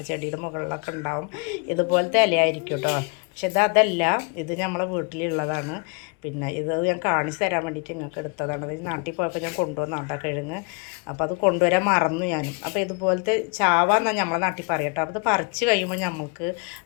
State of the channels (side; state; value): right; quieter; 34.3 dB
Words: മുകളിലൊക്കെ ഉണ്ടാവും. ഇതുപോലത്തെ ഇലയായിരിക്കും കേട്ടോ. പക്ഷെ അതല്ല, ഇത് നമ്മളെ വീട്ടിലുള്ളതാണ്. പിന്നെ ഇത് ഞാൻ കാണിച്ച് തരാൻ വേണ്ടിയിട്ട് നിങ്ങൾക്ക് എടുത്തതാണ്. അത് നാട്ടിൽ പോയപ്പോൾ ഞാൻ കൊണ്ടുവന്നോട്ടോ കിഴങ്ങ്. അപ്പോൾ അത് കൊണ്ടുവരാൻ മറന്നു ഞാനും. അപ്പോൾ ഇതുപോലത്തെ ചാവാന്നാണ് നമ്മളെ നാട്ടിൽ പറയട്ടോ. അപ്പോൾ അത് പറിച്ച് കഴിയുമ്പോൾ നമുക്ക്